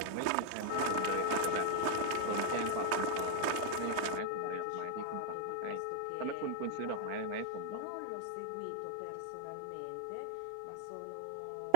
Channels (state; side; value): different; both; correlation -0.01